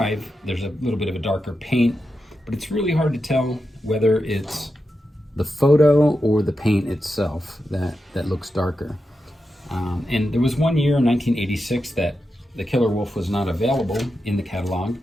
there's a little bit of a darker paint, but it's really hard to tell whether it's the photo or the paint itself that looks darker. And there was one year in 1986 that the Killer Wolf was not available in the catalog,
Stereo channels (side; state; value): both; normal; correlation 0.89